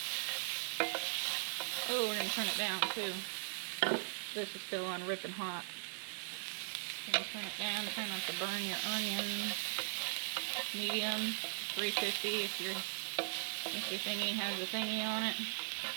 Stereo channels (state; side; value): silent; left; digital silence